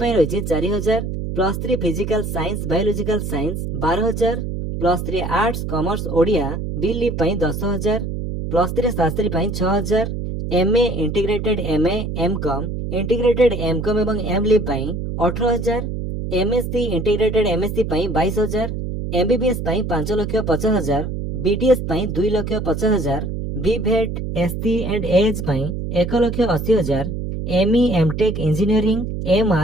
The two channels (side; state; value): right; noise; hum, 4 dB below the sound